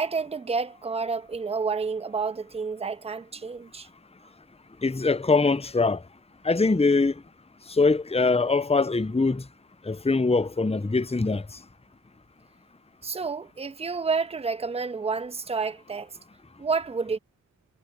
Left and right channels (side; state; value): both; normal; correlation 0.58